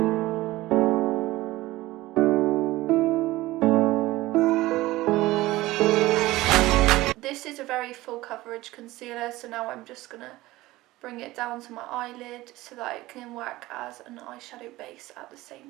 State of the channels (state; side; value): quieter; left; 18.2 dB